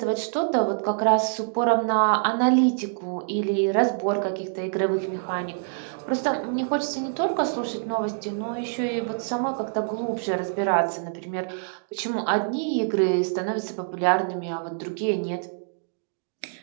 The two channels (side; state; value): left; silent; digital silence